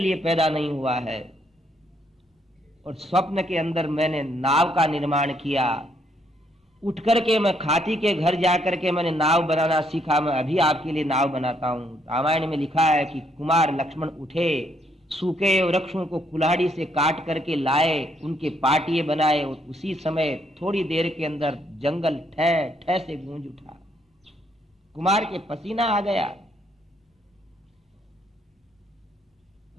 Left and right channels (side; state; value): both; normal; correlation 0.72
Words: पैदा नहीं हुआ है। और स्वप्न के अंदर मैंने नाव का निर्माण किया। उठ करके मैं खाती के घर जाकर के मैंने नाव बनाना सीखा। मैं अभी आपके लिए नाव बनाता हूं। रामायण में लिखा है कि कुमार लक्ष्मण उठे, सूखे वृक्षों को कुल्हाड़ी से काट करके लाए, उनके पाटिये बनाए और उसी समय थोड़ी देर के अंदर जंगल ठह ठह से गूंज उठा। कुमार के पसीना आ गया।